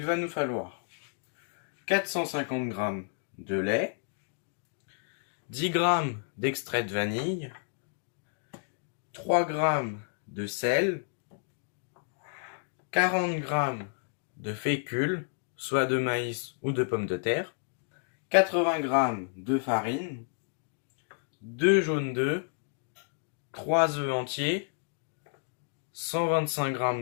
va nous falloir 450 g de lait, 10 g d'extrait de vanille, 3 g de sel, 40 g de fécule, soit de maïs ou de pommes de terre, 80 g de farine, 2 jaunes d'œufs, 3 œufs entiers, 125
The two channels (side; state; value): right; silent; 57 dB below the other